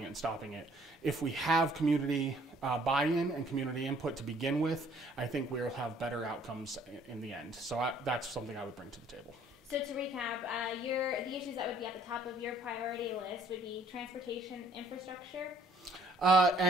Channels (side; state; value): both; normal; correlation 0.59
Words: it and stopping it. If we have community buy-in and community input to begin with, I think we'll have better outcomes in the end. So that's something I would bring to the table. So to recap, the issues that would be at the top of your priority list would be transportation infrastructure?